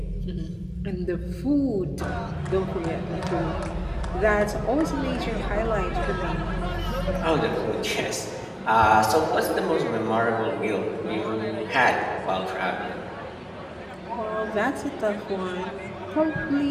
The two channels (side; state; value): both; identical; correlation 1.00